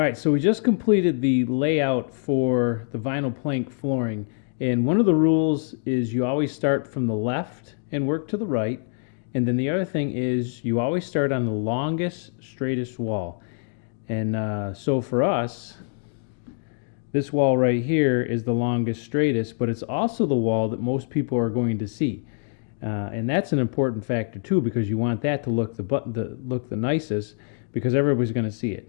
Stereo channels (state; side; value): silent; right; digital silence